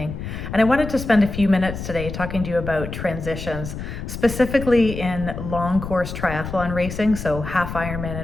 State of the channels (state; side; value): noise; left; rumble, 7 dB below the sound